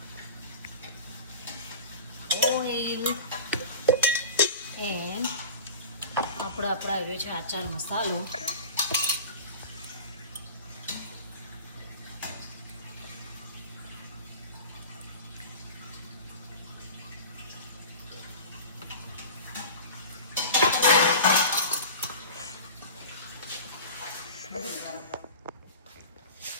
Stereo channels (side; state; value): both; inverted; correlation -0.36